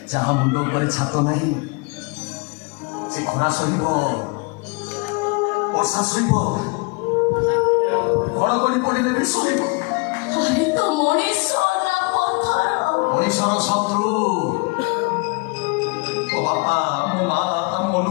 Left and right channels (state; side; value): quieter; right; 29.3 dB